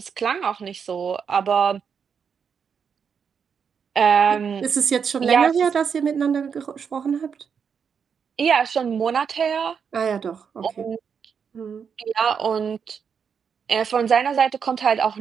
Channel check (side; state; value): left; quieter; 6.7 dB